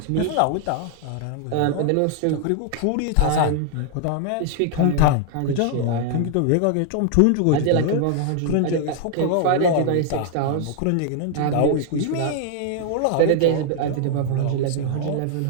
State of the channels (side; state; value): both; different; correlation 0.00